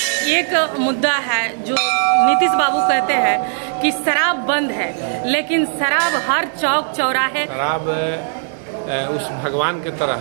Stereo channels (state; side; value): silent; left; digital silence